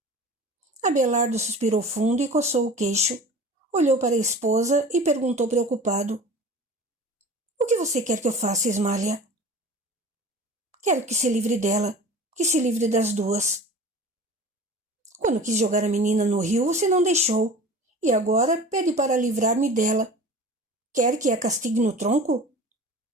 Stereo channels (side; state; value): both; normal; correlation 0.39